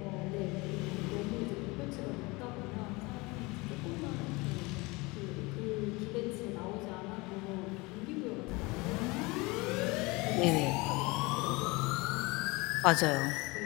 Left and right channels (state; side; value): quieter; right; 24.5 dB